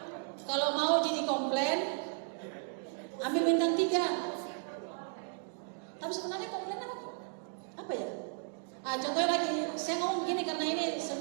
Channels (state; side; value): silent; left; 55 dB below the other